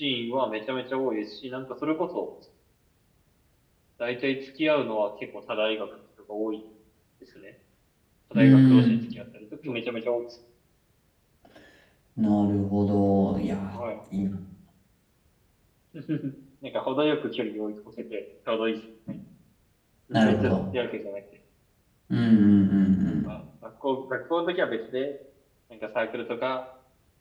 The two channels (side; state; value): both; identical; correlation 1.00